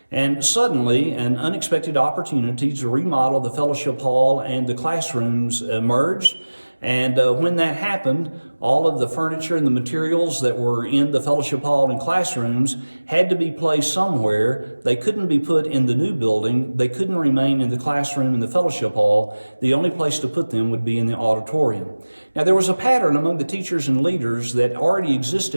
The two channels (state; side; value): inverted; both; correlation -1.00